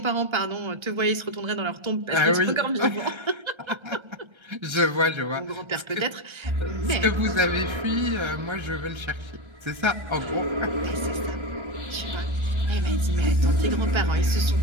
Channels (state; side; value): late; left; 1.3 ms